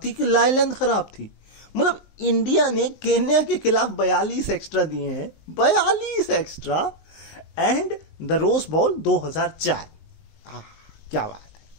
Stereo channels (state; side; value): late; right; 19 ms